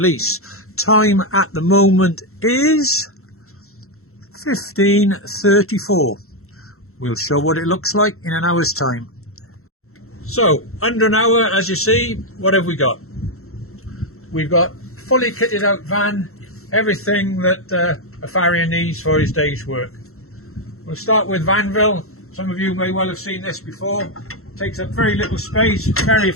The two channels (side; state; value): right; late; 0.63 ms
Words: Time at the moment is 15:34. We'll show what it looks like in an hour's time. So under an hour, as you see, what have we got? We've got fully kitted out van, everything that a farrier needs for his day's work. We'll start with Vanville. Some of you may well have seen this before. Takes up very little space, very